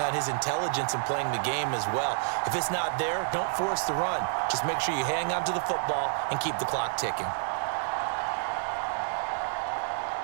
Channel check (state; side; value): silent; left; digital silence